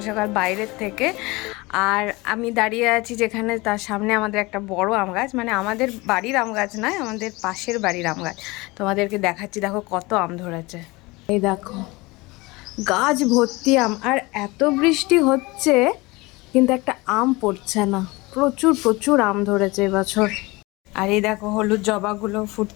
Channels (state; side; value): quieter; right; 23.2 dB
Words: সকাল বাইরের থেকে আর আমি দাঁড়িয়ে আছি যেখানে, তার সামনে আমাদের একটা বড় আম গাছ, মানে আমাদের বাড়ির আম গাছ নয়, আমাদের পাশের বাড়ির আম গাছ। তোমাদেরকে দেখাচ্ছি, দেখো কত আম ধরেছে। এই দেখো গাছ ভর্তি আম, আর এত বৃষ্টি হচ্ছে কিন্তু একটা আম পড়ছে না। প্রচুর প্রচুর আম ধরেছে এবছর। আর এই দেখো হলুদ জবাগুলো